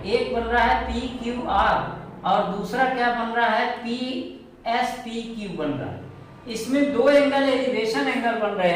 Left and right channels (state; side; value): identical; both; correlation 1.00